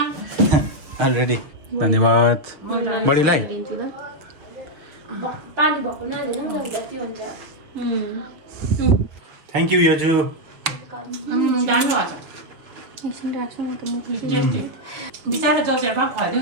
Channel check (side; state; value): left; late; 6.2 ms